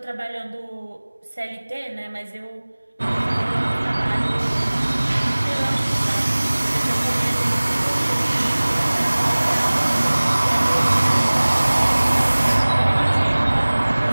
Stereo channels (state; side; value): inverted; both; correlation -1.00